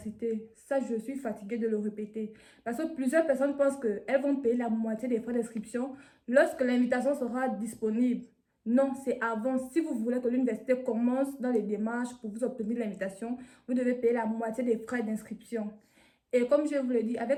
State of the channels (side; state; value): both; identical; correlation 1.00